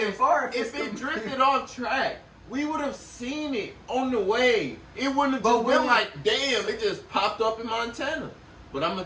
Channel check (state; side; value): identical; both; correlation 1.00